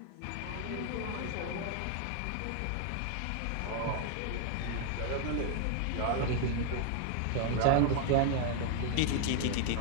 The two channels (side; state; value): both; different; correlation 0.00